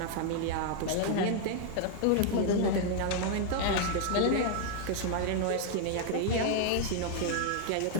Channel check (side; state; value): both; different; correlation -0.01